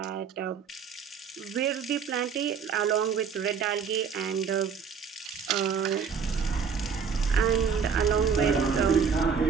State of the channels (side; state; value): left; quieter; 6.4 dB